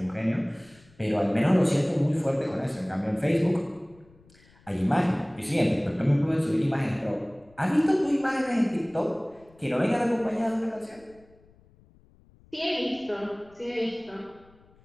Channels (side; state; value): left; noise; rumble, 28 dB below the sound